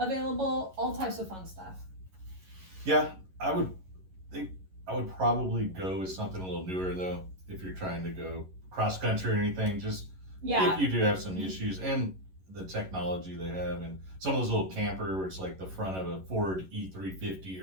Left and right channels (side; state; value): left; late; 11 ms